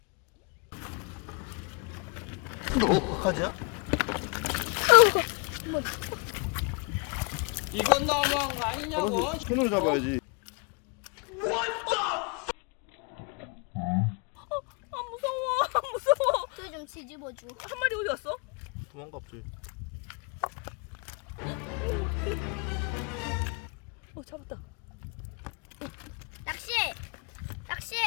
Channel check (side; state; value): right; quieter; 34.7 dB